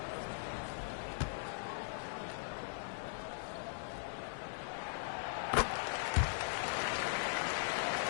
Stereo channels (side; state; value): right; silent; digital silence